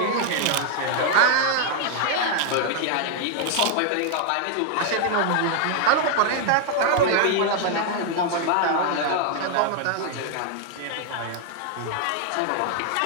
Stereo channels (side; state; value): both; different; correlation 0.00